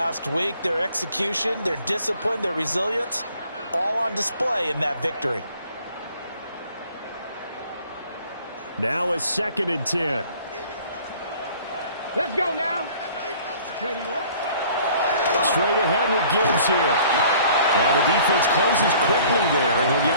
week. Their execution, their discipline, their resilience, all on display in that victory. Now a 2nd and 10. Let's go now. Ready, Straight ahead with Gibbs here. And the defense closes quickly there, and he'll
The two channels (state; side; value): inverted; both; correlation -0.53